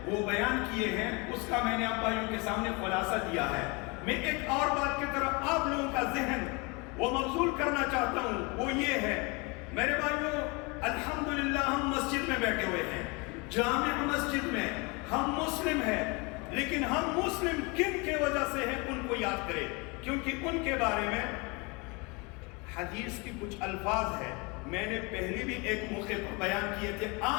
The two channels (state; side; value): quieter; right; 28.6 dB